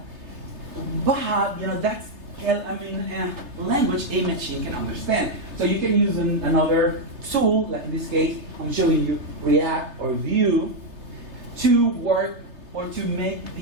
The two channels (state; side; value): late; left; 3.3 ms